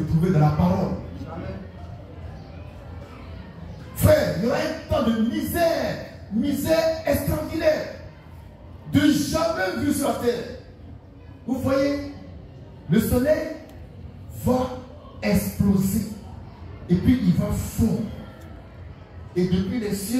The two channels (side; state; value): both; identical; correlation 1.00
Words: trouver dans la parole. Amen. Frère, il y aura un temps de misère extraordinaire, de jamais vu sur la terre. Vous voyez, le soleil va exploser et puis il va fondre. Et depuis les